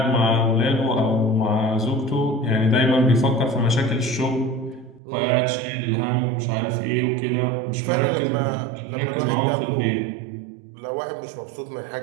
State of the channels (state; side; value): drops out; left; at 5.0 s